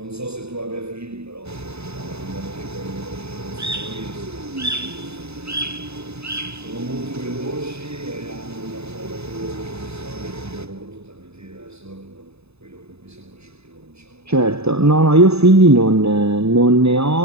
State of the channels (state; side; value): late; left; 0.79 ms